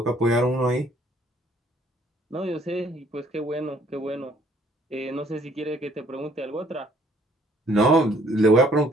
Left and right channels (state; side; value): normal; both; correlation 0.61